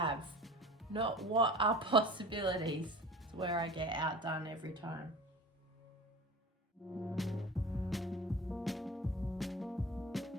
not what are possibilities. It's where I get outdone every time.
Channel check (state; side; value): normal; both; correlation 0.38